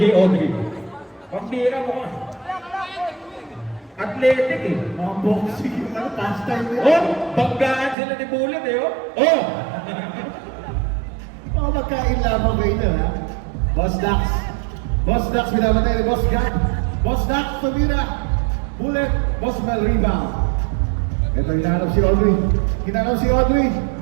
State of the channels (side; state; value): left; drops out; at 8.0 s